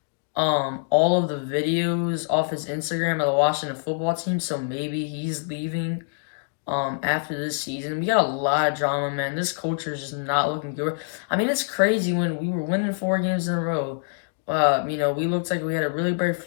all of the videos off his Instagram of the Washington football team, so maybe he's leaving after this season. We got a lot of drama, man. This culture is just not looking good. I mean, it's crazy when we were winning 4 games in a row. You know, we looked like we had a really bright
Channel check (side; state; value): right; silent; digital silence